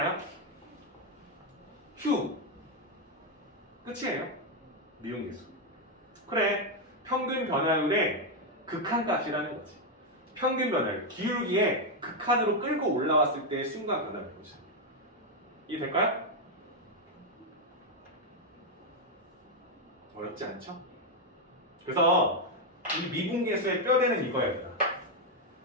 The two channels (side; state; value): both; normal; correlation 0.02